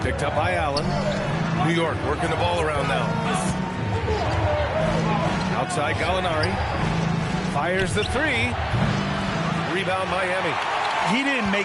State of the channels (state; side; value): identical; both; correlation 1.00